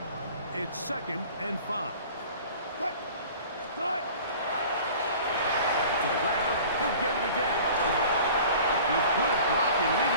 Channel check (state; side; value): inverted; both; correlation -0.44